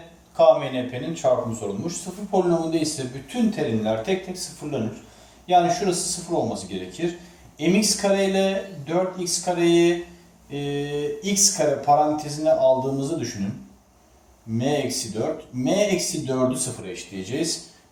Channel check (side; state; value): both; identical; correlation 1.00